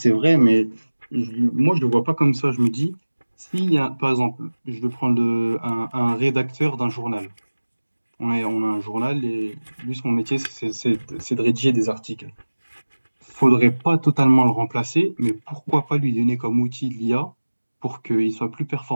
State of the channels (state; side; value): inverted; both; correlation -1.00